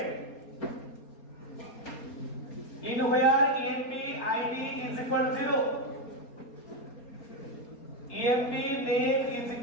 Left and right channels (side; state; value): right; late; 4.3 ms